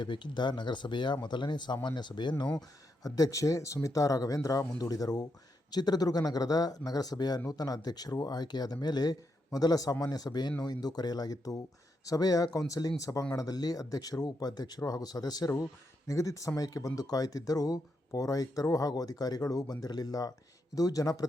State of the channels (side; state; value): both; normal; correlation 0.82